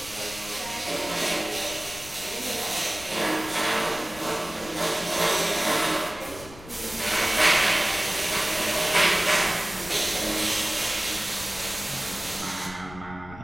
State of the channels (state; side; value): noise; left; rumble, 17 dB below the sound